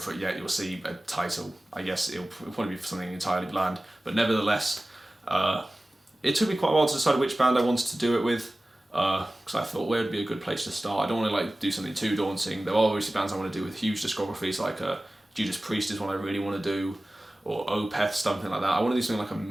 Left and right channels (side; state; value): both; normal; correlation 0.97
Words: it yet. You'll see a title. I guess it'll probably be something entirely bland, but nevertheless, it took me quite a while to decide which band I wanted to do it with. Because I thought where would be a good place to start. I don't want to do something too daunting. There are obviously bands I want to do with huge discographies, like Judas Priest is one I really want to do, or Opeth, something like that. I want to do something like a